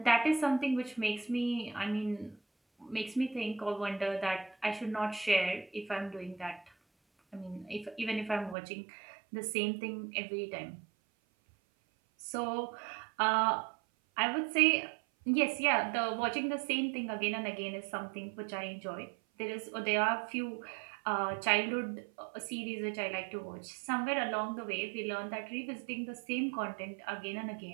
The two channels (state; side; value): drops out; left; at 8.6 s